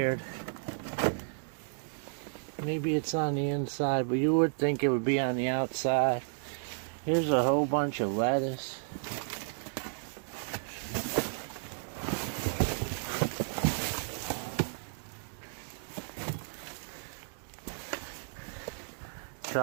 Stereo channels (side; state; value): left; silent; digital silence